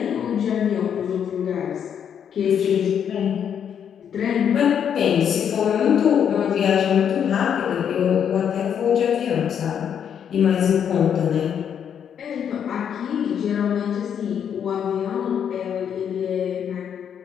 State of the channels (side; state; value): right; quieter; 8.4 dB